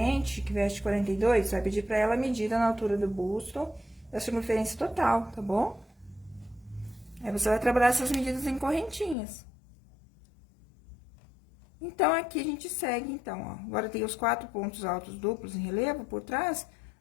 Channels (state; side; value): drops out; right; at 9.2 s